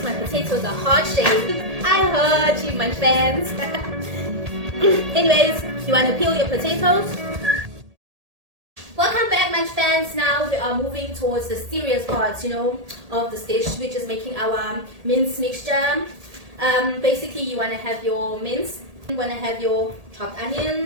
my potatoes are heart-shaped. I heard you, Munch fans. Anyways, you want to peel your potatoes. Welcome back, Munch fans. Now we are moving towards the serious parts, you know, of this dish, which is making our mince mixture. Basically, you want to have your mince, you want to have your chopped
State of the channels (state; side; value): late; left; 1.8 ms